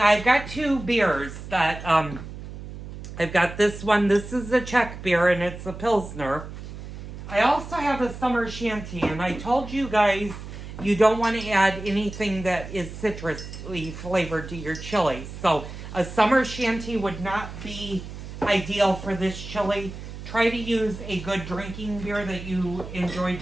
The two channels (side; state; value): right; noise; hum, 11 dB below the sound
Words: I've got 2 beers that, I've got this one. This is a Czech beer and it's a Pilsner. I also have a summer shanty, and I told you guys you don't want to add anything that is citrusly flavored to your chili. So a summer shanty would not be ideal for this chili. Try to use a good drinking beer that you enjoy